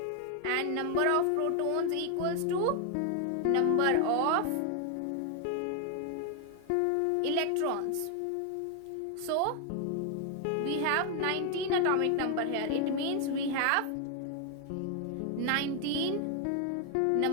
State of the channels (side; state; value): both; different; correlation 0.00